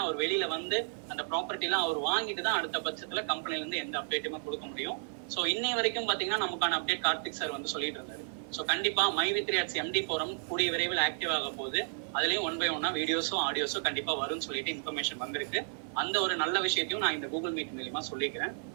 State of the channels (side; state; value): left; silent; 56 dB below the other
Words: அவர் வெளியில வந்து அந்த ப்ராப்பர்ட்டி எல்லாம் அவர் வாங்கிட்டு தான் அடுத்த பட்சத்துல கம்பெனில இருந்து எந்த அப்டேட்டுமே கொடுக்க முடியும். சோ இன்னை வரைக்கும் பாத்தீங்கன்னா நமக்கான அப்டேட் கார்த்திக் சார் வந்து சொல்லிட்டு இருந்தாரு. சோ கண்டிப்பா MyV3Arts MD forum கூடிய விரைவில் ஆக்டிவ் ஆக போகுது. அதுலயும் 1 by 1 வீடியோஸும் ஆடியோஸும் கண்டிப்பா வரும்னு சொல்லிட்டு இன்ஃபர்மேஷன் வந்திருக்கு. அந்த ஒரு நல்ல விஷயத்தையும் நான் இந்த கூகுள் மீட் மூலமா சொல்லிக்கிறேன்.